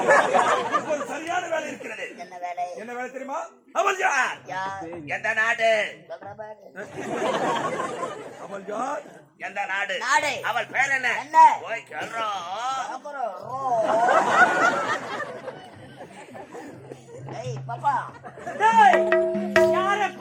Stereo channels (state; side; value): identical; both; correlation 1.00